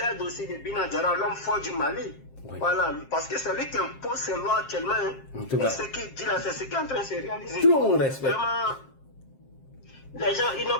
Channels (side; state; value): right; late; 7.5 ms